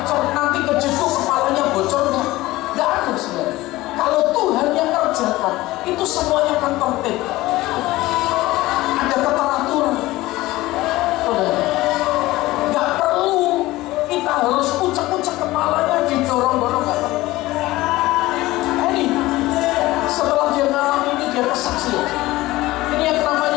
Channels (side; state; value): right; quieter; 18.2 dB